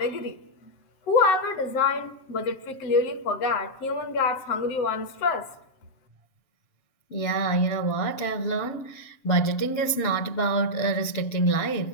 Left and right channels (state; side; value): late; right; 7.5 ms